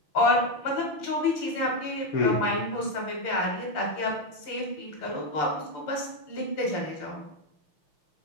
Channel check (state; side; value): late; right; 6.8 ms